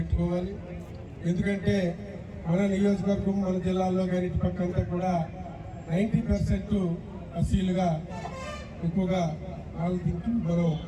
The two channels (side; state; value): both; identical; correlation 1.00